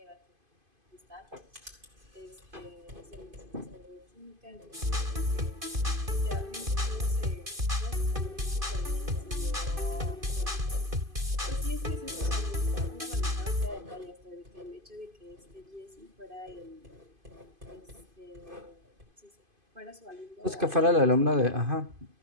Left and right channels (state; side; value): late; left; 2.5 ms